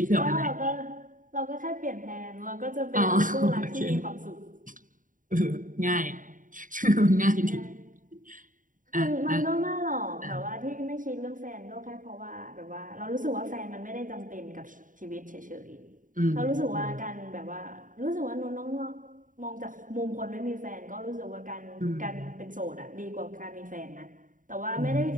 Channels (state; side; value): late; left; 0.38 ms